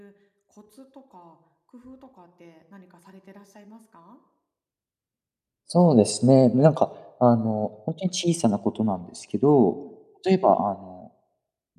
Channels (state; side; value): identical; both; correlation 1.00